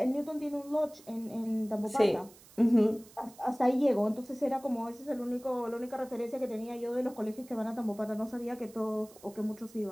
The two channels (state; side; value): noise; right; hiss, 23 dB below the sound